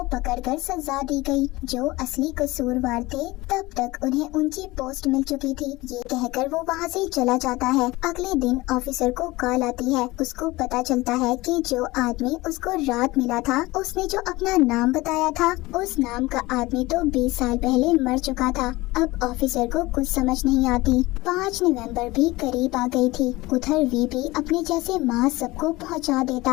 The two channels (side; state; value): right; quieter; 20.4 dB